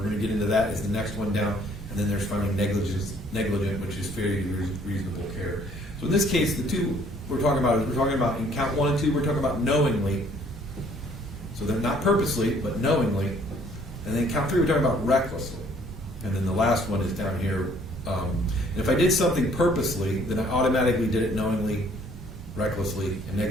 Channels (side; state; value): both; normal; correlation 0.60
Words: going to get into that, is the next one down. And then there's finally negligent, which is fairly reasonable care. So in this case, the two we're talking about in count 1 and 2, we're talking about knowingly. So they're not purposely, but knowingly. And then count 3, we're talking about recklessly. And then the last one is down here, And if I did something purposely, then I automatically did it knowingly, recklessly, and